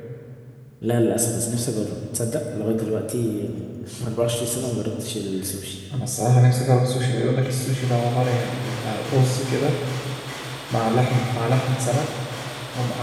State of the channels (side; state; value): both; identical; correlation 1.00